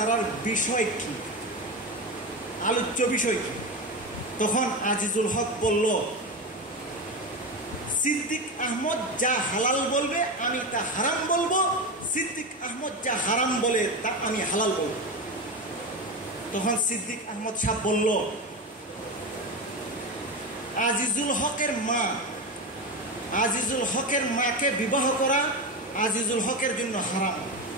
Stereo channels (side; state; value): both; normal; correlation 0.18